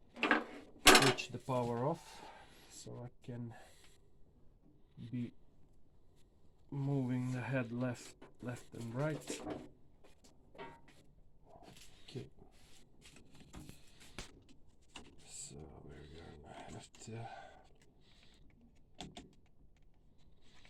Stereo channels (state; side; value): identical; both; correlation 1.00